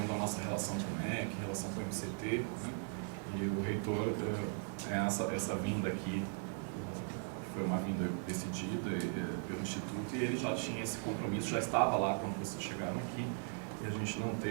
a nossa relação com o MEC, relação com o MCT, né? E o reitor, essa vinda aqui, foi uma vinda decidida pelo Instituto, e ele já tinha esse compromisso, já estava lá quando vocês chegaram aqui, e a gente não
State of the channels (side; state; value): left; silent; 52 dB below the other